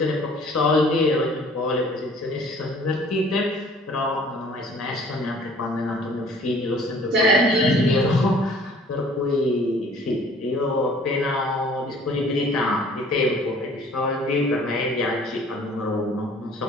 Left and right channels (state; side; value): normal; both; correlation 0.53